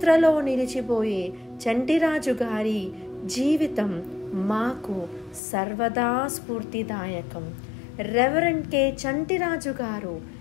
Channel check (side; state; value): right; drops out; at 5.4 s